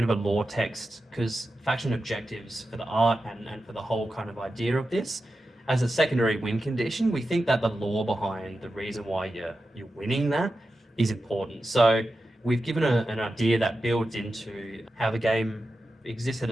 of a lore text because faction objectives for the art and for the whole kind of idea of this, as a secondary win condition, we think that the lore behind the reason why you're winning that is important. So we've given an idea that builds into how the game exists at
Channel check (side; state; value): both; normal; correlation 0.91